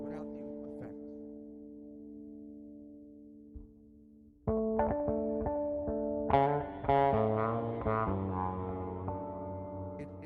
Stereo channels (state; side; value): identical; both; correlation 1.00